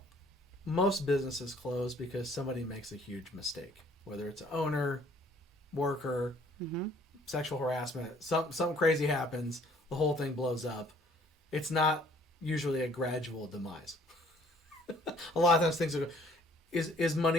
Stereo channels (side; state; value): both; normal; correlation 0.58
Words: most businesses close because somebody makes a huge mistake, whether it's an owner, worker, sexual harassment, something crazy happens, the whole thing blows up. It's not usually a gradual demise. A lot of times things are, is